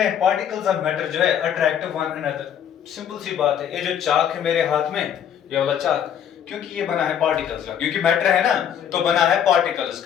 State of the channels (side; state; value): right; quieter; 9.1 dB